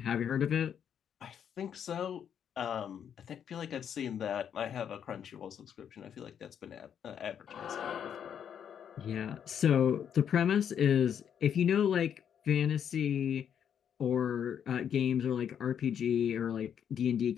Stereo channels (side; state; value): right; quieter; 8.5 dB